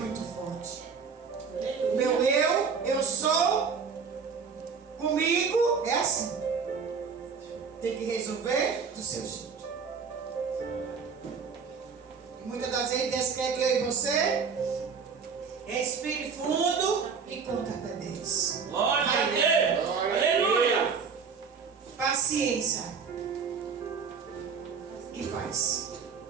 forte. Meu eu sou, comigo, é assim. Tem que resolver do seu jeito. Muitas das vezes Deus quer que eu e você respire fundo e conta até 10. Glória a Deus. Aleluia. Paciência. E faz.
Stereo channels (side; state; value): left; quieter; 5.7 dB